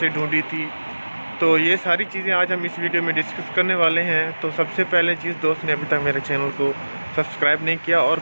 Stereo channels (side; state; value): both; inverted; correlation -1.00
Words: ढूंढी थी, तो ये सारी चीज़ें आज हम इस वीडियो में डिस्कस करने वाले हैं। तो सबसे पहले चीज़, दोस्त ने अभी तक मेरे चैनल को सब्सक्राइब नहीं किया और